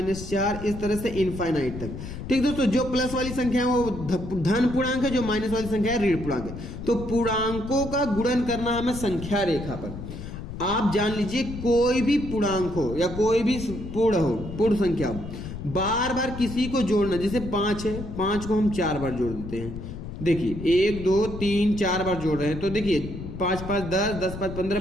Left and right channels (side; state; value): left; noise; rumble, 9 dB below the sound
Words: इस तरह से इनफाइनाइट तक। ठीक दोस्तों, जो प्लस वाली संख्या है वो धन पूर्णांक है, जो माइनस वाली संख्या है ऋण पूर्णांक है। तो पूर्णांकों का गुणन करना है हमें संख्या रेखा पर। आप जान लीजिए, कोई भी पूर्णांक हो या कोई भी पूर्ण संख्या हो, बार बार किसी को जोड़ना। जैसे 5 है, 5 को हम 4 बार जोड़ देते हैं। देखिए 1 2 3 4 बार जोड़ रहे हैं, तो देखिए 5 5 10, 10 5 15,